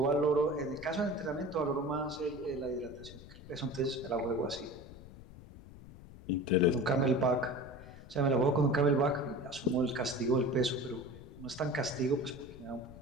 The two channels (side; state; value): left; noise; rumble, 17 dB below the sound